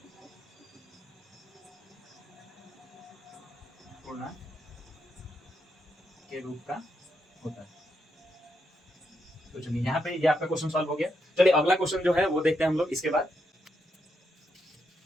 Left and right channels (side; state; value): both; normal; correlation 0.81